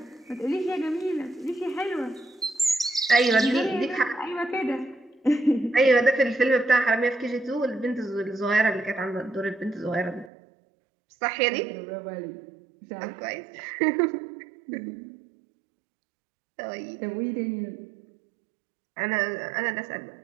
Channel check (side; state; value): left; drops out; at 10.3 s